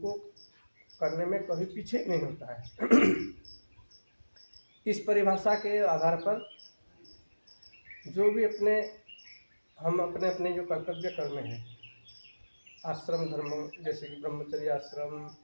को करने में कभी पीछे नहीं होता है। इस परिभाषा के आधार पर जो भी हम अपने जो कर्तव्य कर्म हैं, आश्रम धर्म जैसे कि ब्रह्मचर्य आश्रम,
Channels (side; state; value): both; inverted; correlation -1.00